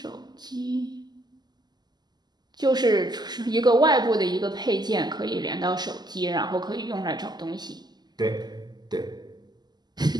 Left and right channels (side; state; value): left; late; 0.20 ms